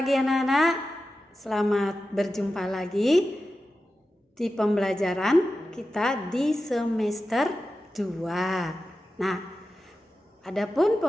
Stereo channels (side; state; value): both; normal; correlation 0.92